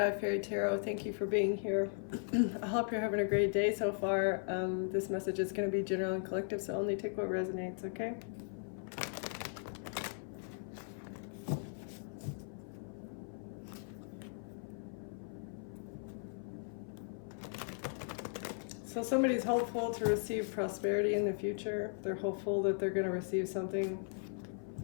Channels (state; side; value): silent; right; 53 dB below the other